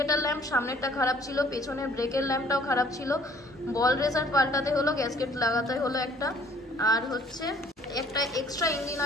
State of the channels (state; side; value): normal; both; correlation 0.57